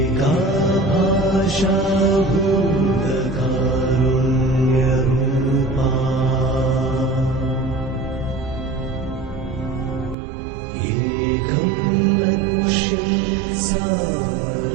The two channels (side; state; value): left; drops out; at 10.2 s